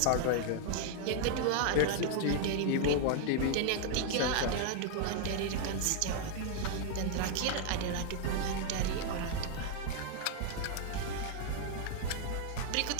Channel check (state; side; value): different; both; correlation 0.00